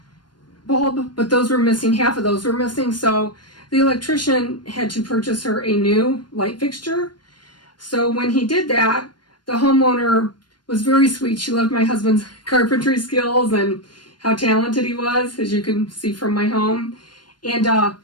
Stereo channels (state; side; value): late; right; 0.71 ms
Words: bulb, but those were missing. Half of those were missing. So the electrician had to purchase her a new light fixture. So when he did that, the homeowner was very sweet. She loved my husband's carpentry skills and how talented he was, as you can see from my home. And